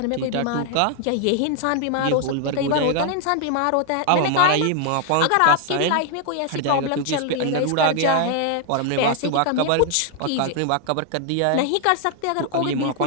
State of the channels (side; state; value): both; different; correlation 0.00